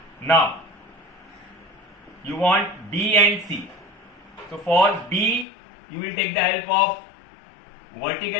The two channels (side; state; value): right; drops out; at 5.5 s